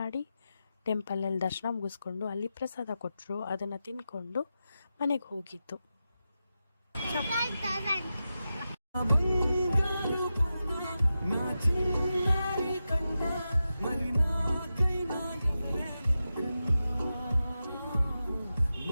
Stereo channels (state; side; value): inverted; both; correlation -0.91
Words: ಟೆಂಪಲಲ್ಲಿ ದರ್ಶನ ಮುಗಿಸ್ಕೊಂಡು ಅಲ್ಲಿ ಪ್ರಸಾದ ಕೊಟ್ಟರು. ಅದನ್ನು ತಿಂದ್ಕೊಂಡು ಮನೆಗೆ ಹೋಗಿತ್ತು.